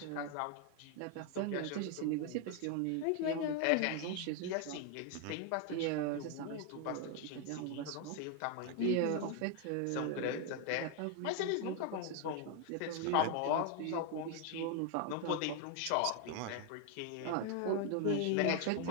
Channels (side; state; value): both; different; correlation 0.01